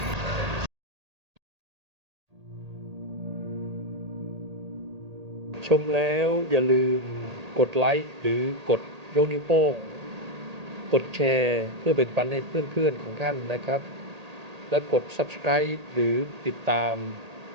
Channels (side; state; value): left; late; 1.8 ms